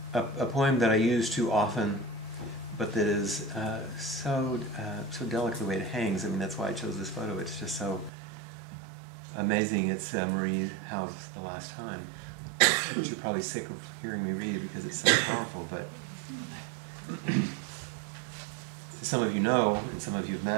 A poem that I use too often, but that is so delicate the way it hangs. I mean, that's why I chose this photo. It's just so amazing. It's Marie Howe's The Last Time, which you're probably sick of hearing me read because it's so powerful. But some of you know, and some of you have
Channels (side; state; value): left; drops out; at 8.1 s